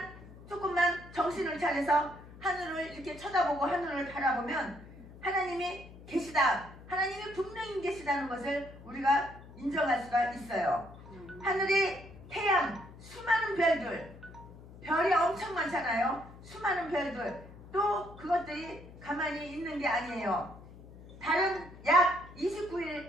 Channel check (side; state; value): left; noise; hum, 18 dB below the sound